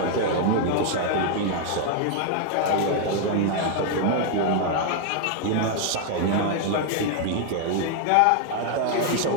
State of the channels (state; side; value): different; both; correlation 0.00